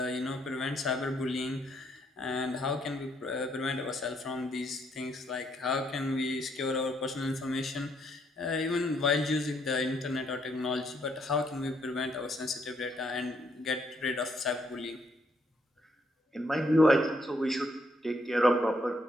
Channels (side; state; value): both; normal; correlation 0.72